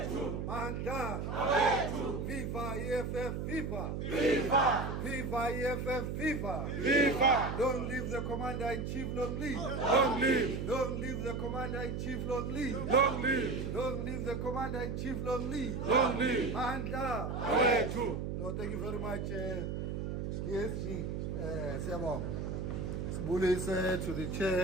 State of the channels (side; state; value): right; noise; hum, 3 dB below the sound